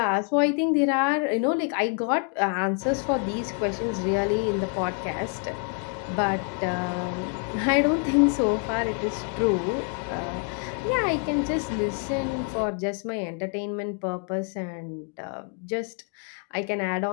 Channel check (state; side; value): quieter; right; 38.6 dB